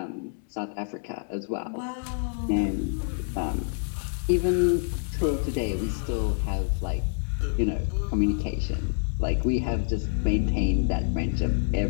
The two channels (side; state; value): right; silent; digital silence